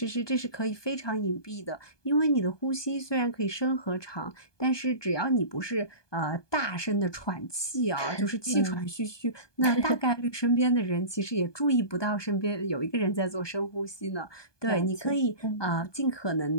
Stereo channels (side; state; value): right; late; 1.2 ms